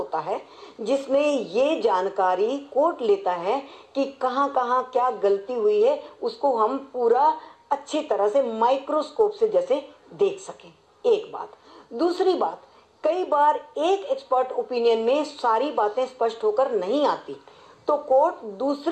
है जिसमें ये जानकारी कोर्ट लेता है कि कहाँ कहाँ क्या गलती हुई है, उसको हम पूरा अच्छी तरह से माइक्रोस्कोप से जैसे देख सकें। एक बात। दूसरी बात, कई बार एक एक्सपर्ट ओपिनियन में सारी बातें स्पष्ट होकर नहीं आती, तो कोर्ट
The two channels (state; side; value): identical; both; correlation 1.00